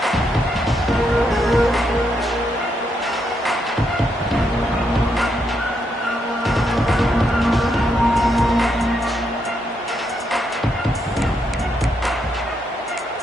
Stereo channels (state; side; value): normal; both; correlation 0.79